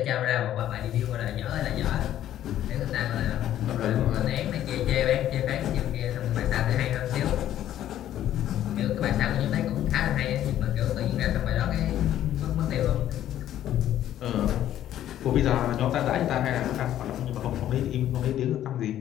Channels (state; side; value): quieter; right; 12.0 dB